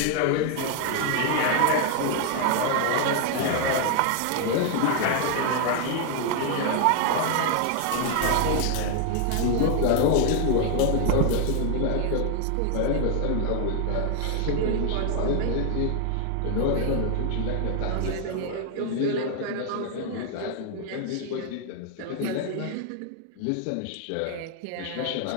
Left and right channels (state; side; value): different; both; correlation 0.00